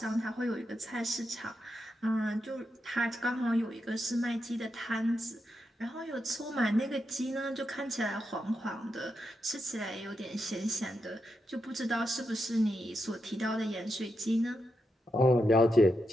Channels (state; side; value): normal; both; correlation 0.85